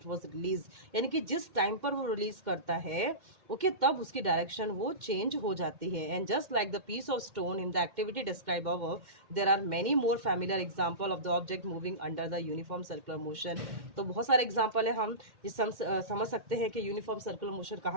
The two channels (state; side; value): late; left; 2.1 ms